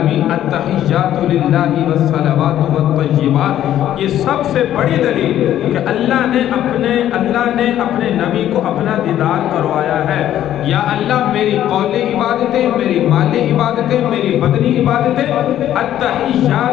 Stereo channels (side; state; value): right; quieter; 11.8 dB